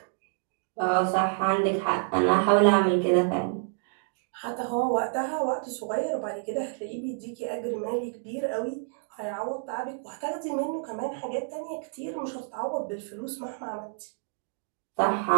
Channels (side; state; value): left; silent; digital silence